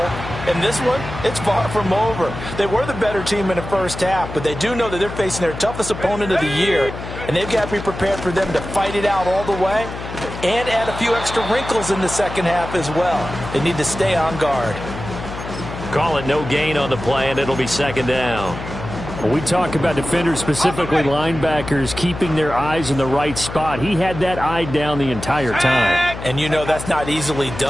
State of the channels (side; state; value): left; noise; hum, 9 dB below the sound